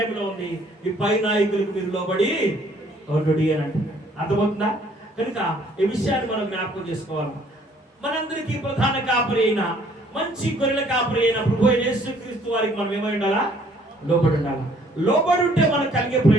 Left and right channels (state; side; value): normal; both; correlation 0.61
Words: ఉంది, ఈ పై నాయకులకు మీరు లోబడి అని అంటున్నాడు. అర్థమవుతుందా? కనుక ఈ విషయాన్ని మనం జ్ఞాపకం చేసుకోవాలి. మనందరికీ ప్రధాన కాపరి అయిన, మంచి గొర్రెల కాపరి అయిన ప్రభు యేసుక్రీస్తు వారికి మనం ఏమై ఉండాలా? లోబడి ఉండాలా. లోబడి ఉంటే మనకు కలిగే